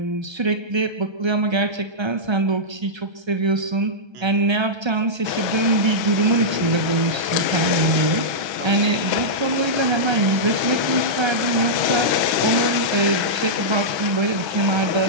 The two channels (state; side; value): late; left; 1.3 ms